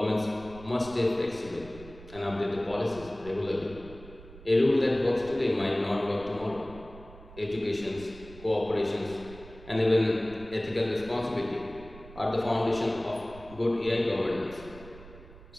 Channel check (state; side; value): noise; right; rumble, 18 dB below the sound